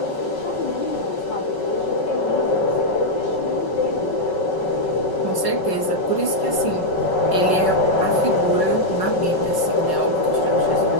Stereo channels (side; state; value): right; late; 5.3 ms